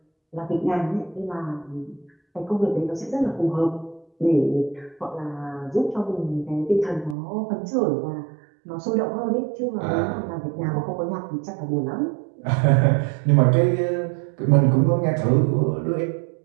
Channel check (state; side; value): drops out; left; at 7.2 s